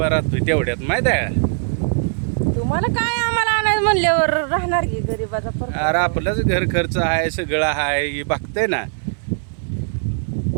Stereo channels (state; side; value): silent; left; digital silence